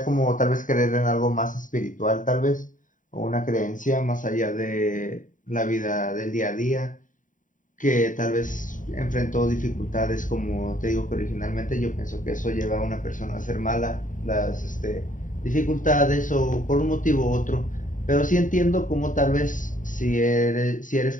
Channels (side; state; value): right; late; 0.38 ms